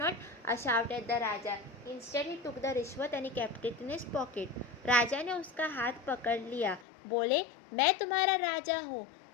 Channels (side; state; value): right; drops out; at 6.9 s